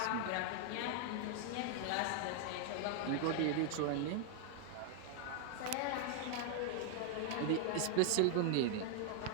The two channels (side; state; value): both; different; correlation 0.00